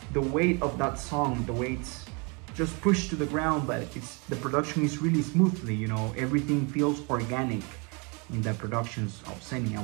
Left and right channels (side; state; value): left; quieter; 31.9 dB